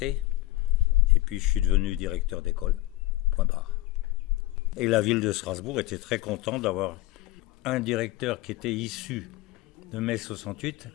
Et puis je suis devenu directeur d'école, point barre. Et la ville de Strasbourg était très contente d'avoir un directeur qui était issu de mai 68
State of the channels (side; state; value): right; quieter; 17.3 dB